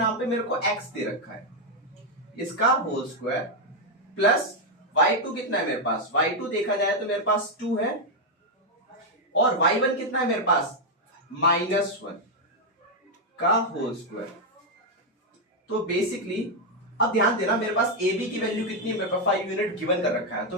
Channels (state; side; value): normal; both; correlation 0.01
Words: पे मेरे को x दे रखा है, इसका होल स्क्वायर प्लस y2 कितना है मेरे पास, y2 देखा जाए तो मेरे पास 2 है और y1 कितना है मेरे पास -1 का होल स्क्वायर। तो बेसिकली अब ध्यान देना, मेरे पास ए बी की वैल्यू कितनी है, मेरे पास 5 यूनिट गिवन कर रखा है, तो